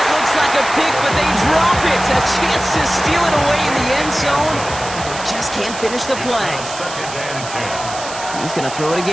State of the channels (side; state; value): right; noise; hiss, 11 dB below the sound